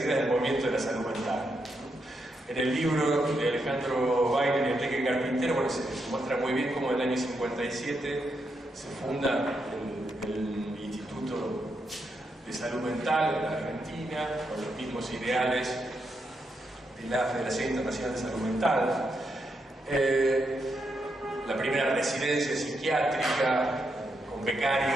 del movimiento de la salud mental. En el libro de Alejandro Weiner y Enrique Carpintero, bueno, se muestra muy bien cómo en el año 57 se funda el Instituto de Salud Mental en la Argentina, con los mismos ideales de la Federación Internacional de Salud Mental. La primera residencia psiquiátrica con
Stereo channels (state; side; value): normal; both; correlation 0.82